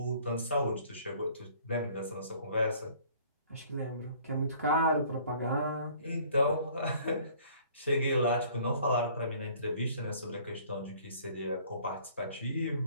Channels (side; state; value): both; inverted; correlation -0.55